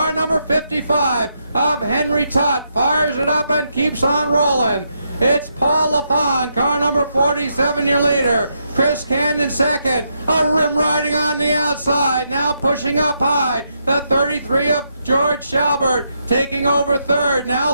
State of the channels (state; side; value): inverted; both; correlation -0.80